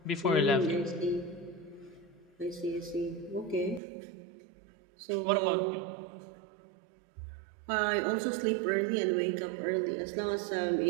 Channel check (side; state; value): left; drops out; at 3.8 s